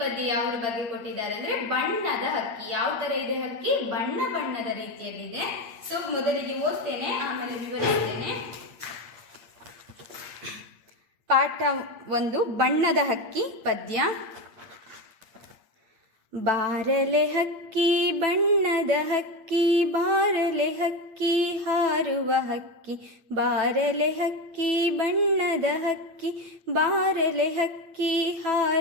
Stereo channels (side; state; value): left; late; 8.6 ms